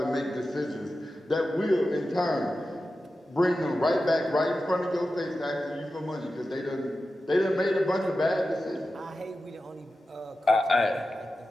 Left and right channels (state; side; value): normal; both; correlation 0.92